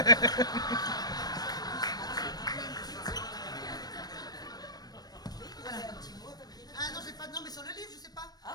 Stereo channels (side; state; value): right; late; 0.19 ms